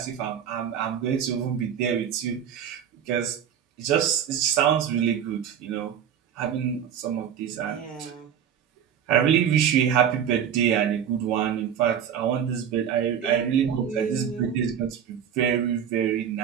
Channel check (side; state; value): left; quieter; 8.7 dB